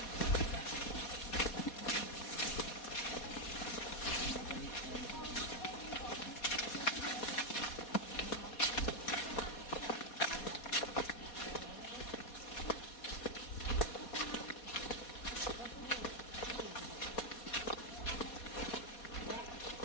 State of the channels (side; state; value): right; late; 4.2 ms